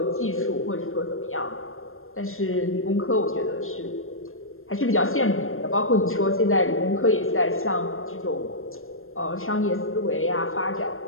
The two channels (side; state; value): right; late; 0.60 ms